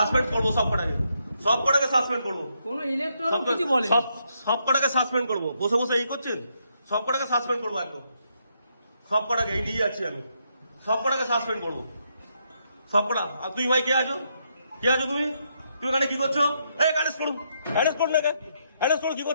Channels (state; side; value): inverted; both; correlation -0.77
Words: করবো সব কটাকে, সব কটাকে সাসপেন্ড করবো। কোনো ইলেকট্রন কিছু বলে সব কটাকে সাসপেন্ড করবো, বসে বসে এই করছেন, সব কটাকে সাসপেন্ড করবো একদম, সব কটাকে এই নিয়ে যাচ্ছি আমি, সব কটাকে সাসপেন্ড করবো সব কটা। আর তুই ভাই কে আছো, কে আছো তুমি, তুমি এখানে কি করছো? এই অ্যারেস্ট করুন, অ্যারেস্ট করুন, অ্যারেস্ট করুন, কি